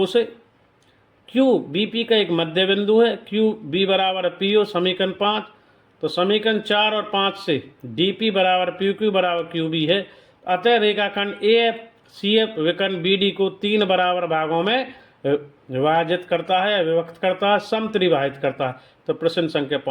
से। क्यू बी पी का एक मध्य बिंदु है, क्यू बी बराबर पी ओ समीकरण 5। तो समीकरण 4 और 5 से डी पी बराबर पी क्यू बराबर क्यू बी है। अतः रेखाखंड ए एफ सी एफ विकर्ण बी डी को 3 बराबर भागों में विभाजित करता है, विभक्त करता है, समत्रिभाजित करता है। तो प्रश्न संख्या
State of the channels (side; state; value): both; identical; correlation 1.00